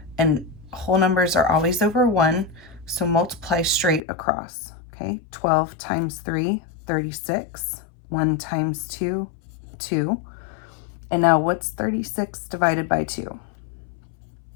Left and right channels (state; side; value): drops out; right; at 4.0 s